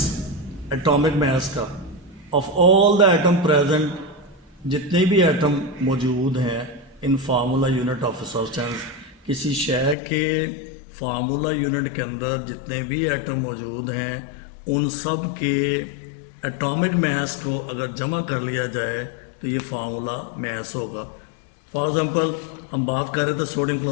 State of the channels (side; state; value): right; drops out; at 10.0 s